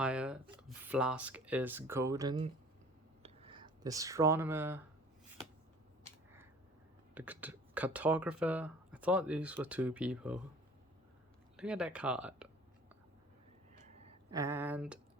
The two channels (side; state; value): both; normal; correlation 0.48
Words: flask is golden. The astronomer, the cartographer. I thought these were two people. Look at that card. And